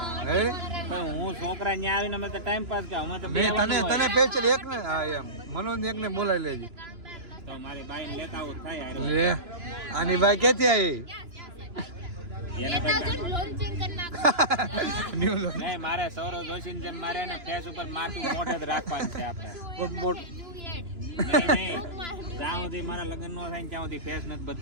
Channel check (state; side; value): late; left; 2.9 ms